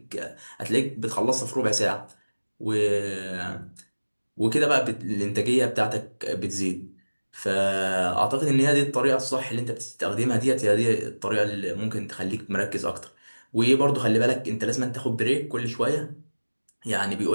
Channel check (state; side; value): inverted; both; correlation -1.00